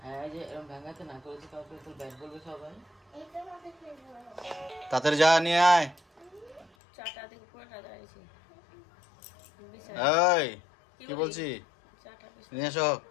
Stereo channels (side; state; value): right; drops out; at 6.7 s